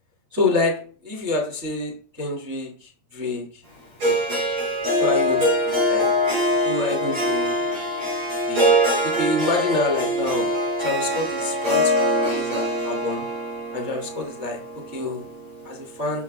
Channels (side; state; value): left; late; 8.6 ms